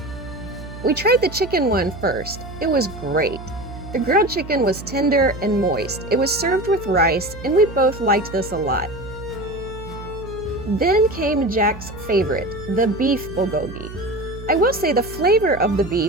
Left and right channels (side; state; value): right; noise; hum, 13 dB below the sound